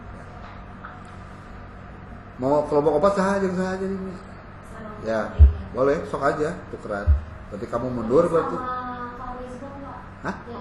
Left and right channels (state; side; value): identical; both; correlation 1.00